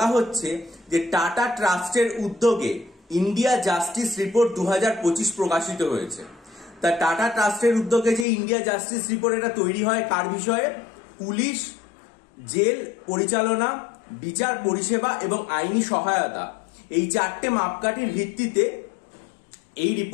হচ্ছে যে টাটা ট্রাস্টের উদ্যোগে ইন্ডিয়া জাস্টিস রিপোর্ট 2025 প্রকাশিত হয়েছে। তা টাটা ট্রাস্টের উদ্যোগে যে ইন্ডিয়া জাস্টিস রিপোর্ট এটা তৈরি হয় কার বিষয়ে? পুলিশ, জেল পরিচালনা, বিচার পরিষেবা এবং আইনি সহায়তা, এই চারটে মাপকাঠির ভিত্তিতে এই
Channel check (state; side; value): drops out; right; at 8.2 s